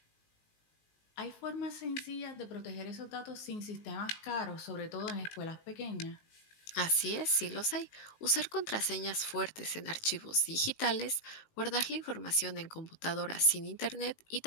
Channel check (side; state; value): right; late; 19 ms